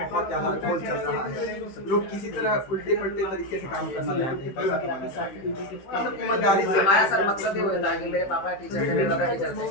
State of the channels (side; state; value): right; late; 15 ms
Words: बहुत ज्यादा ट्रोल चल रहा है। लोग किसी तरह उल्टे पलटे तरीके से काम करना चाहते हैं, पैसा कमाना चाहते हैं, मतलब ईमानदारी से। हमारा सर मकसद ये होता है कि मेरे पापा टीचर थे, मेरे दादा टीचर थे,